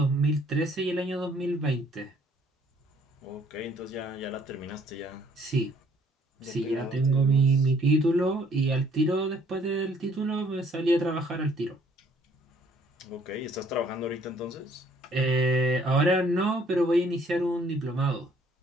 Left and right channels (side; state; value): both; normal; correlation 0.61